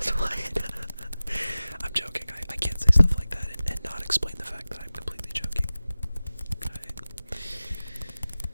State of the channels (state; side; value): inverted; both; correlation -0.97